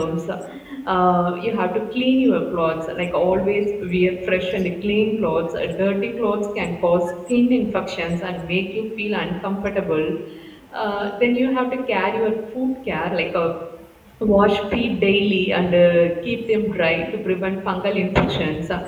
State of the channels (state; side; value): identical; both; correlation 1.00